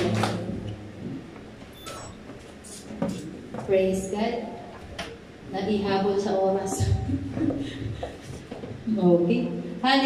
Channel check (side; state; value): both; identical; correlation 1.00